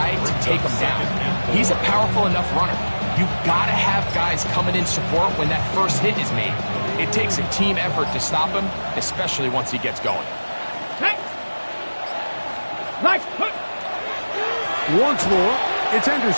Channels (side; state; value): both; inverted; correlation -1.00